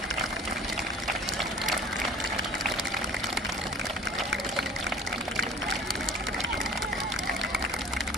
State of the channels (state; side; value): normal; both; correlation 0.44